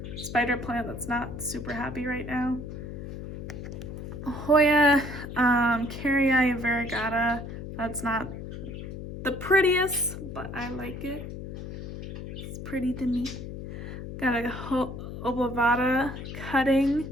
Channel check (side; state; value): left; noise; hum, 9 dB below the sound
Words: spider plant that's not super happy right now. Hoya Carrii variegata. That's not the prettiest, but I like it. It's pretty to me. Got a Oblavata cutting,